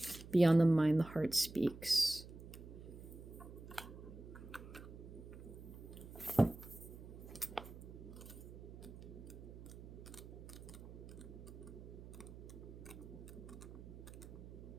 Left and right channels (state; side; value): noise; right; hum, 13 dB below the sound